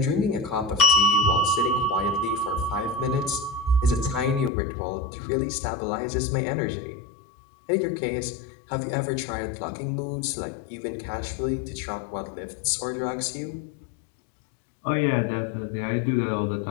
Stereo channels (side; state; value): right; drops out; at 4.5 s